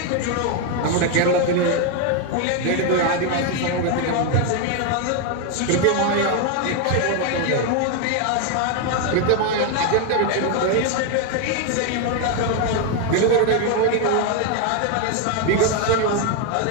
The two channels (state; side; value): different; both; correlation 0.01